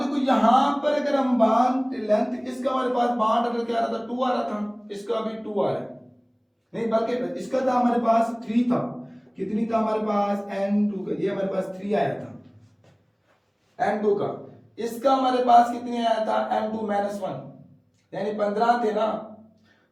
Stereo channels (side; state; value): both; identical; correlation 1.00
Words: देखो यहां पर अगर हम बॉन्ड लेंथ, इसका हमारे पास बॉन्ड ऑर्डर क्या आ रहा था, 2 आ रहा था, इसका भी 2 आ रहा है, नहीं बल्कि इसका था हमारे पास 3 था, कितनी था हमारे पास, N2 का, ये हमारे पास 3 आया था N2 का, इसका हमारे पास कितने आया था, N2-1, यानी 15 थे ना,